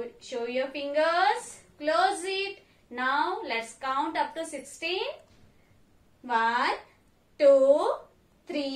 your fingers, close it. Now let's count up to 16. 1, 2,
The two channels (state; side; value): identical; both; correlation 1.00